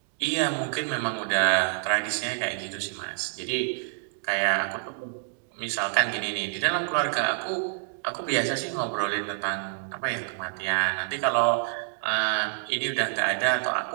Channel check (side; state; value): left; silent; digital silence